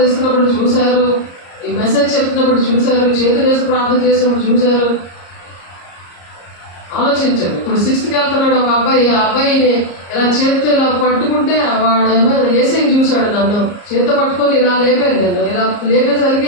ఇస్తున్నప్పుడు చూశారు, ఈ మెసేజ్ చెప్తున్నప్పుడు చూశారు, చేతులు వేసి ప్రార్థన చేసినప్పుడు చూశారు. ఆలోచించండి. ఇప్పుడు 6th వెళ్తున్నాడు ఒక అబ్బాయి, ఆ అబ్బాయిని ఇలా చేతితో ఇలా పట్టుకుంటే వాడు ఏసీని చూశాడు. నన్ను చేతితో పట్టుకొని ఇలా లేపాను. నేను ఇలా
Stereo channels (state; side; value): late; right; 34 ms